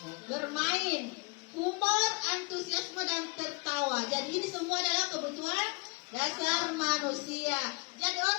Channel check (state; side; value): quieter; right; 30.9 dB